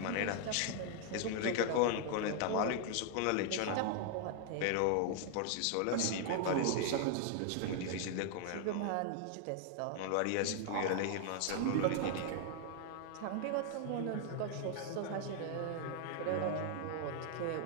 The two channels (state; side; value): different; both; correlation 0.00